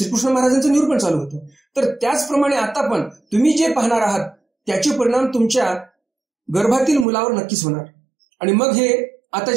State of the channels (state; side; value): drops out; left; at 7.1 s